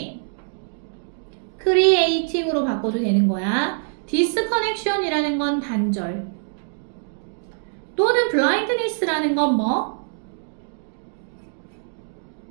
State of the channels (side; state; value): left; silent; digital silence